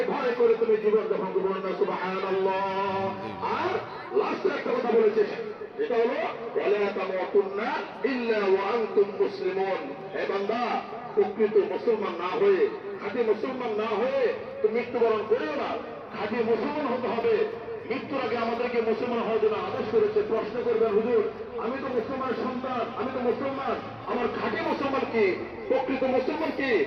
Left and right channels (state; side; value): identical; both; correlation 1.00